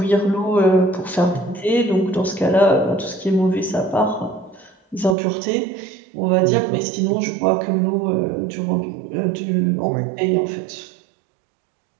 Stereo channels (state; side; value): drops out; left; at 5.2 s